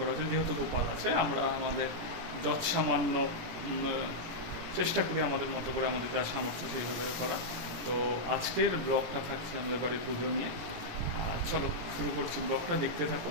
হয়েছে। যেহেতু গোপাল আছে, আমরা আমাদের যৎ সামান্য চেষ্টা করি আমাদের মতো করে, আমাদের যা সামর্থ্য সেইভাবে করা। তো আজকের ব্লগটা থাকছে আমাদের বাড়ির পুজো নিয়ে। চলো শুরু করছি, ব্লগটা দেখতে থাকো।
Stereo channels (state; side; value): late; left; 17 ms